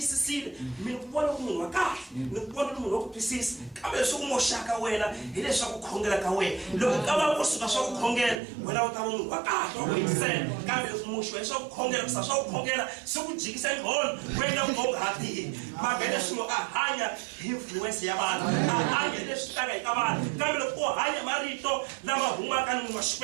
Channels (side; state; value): left; drops out; at 8.4 s